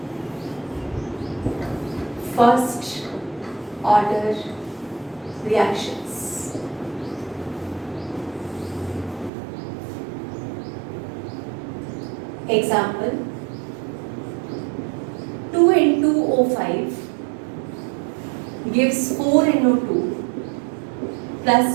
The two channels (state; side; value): drops out; left; at 9.3 s